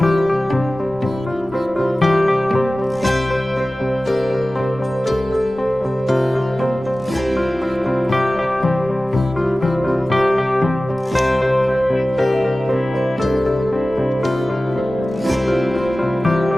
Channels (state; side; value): noise; left; rumble, 23 dB below the sound